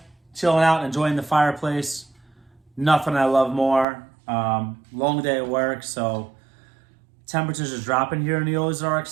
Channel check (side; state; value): left; drops out; at 3.9 s